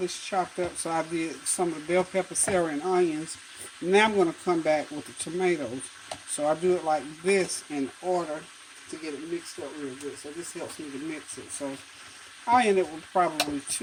chopped up. So I did some of the bell pepper, celery, and onions. Now I'm going to come back with the tomatoes. So I do it like this in order to get it mixed up real good. So this helps me to mix it. So I end up with probably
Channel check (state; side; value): identical; both; correlation 1.00